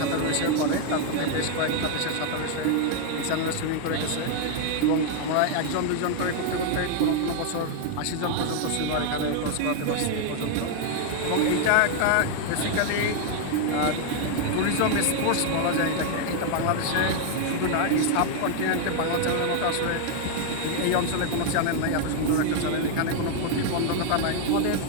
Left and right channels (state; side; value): different; both; correlation 0.00